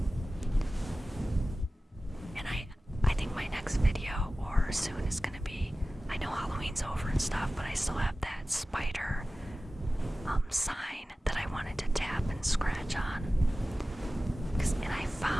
And I think my next video, or soon, is gonna be, I know Halloween's over and stuff, but I still have that spider sign that I wanted to tap and scratch on. And I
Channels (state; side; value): normal; both; correlation 0.96